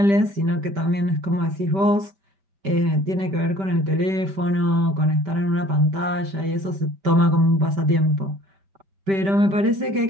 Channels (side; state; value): left; late; 5.1 ms